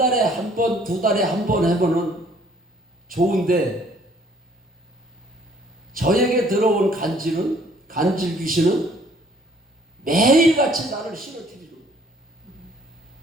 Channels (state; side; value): normal; both; correlation 0.60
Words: 한 번, 2달에 한 번 해보는 좋은데 저에게 들어온 간질 귀신은 매일같이 나를 싫어뜨리죠.